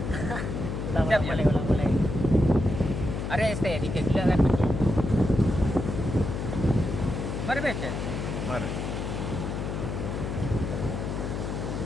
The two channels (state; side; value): noise; left; hum, 3 dB below the sound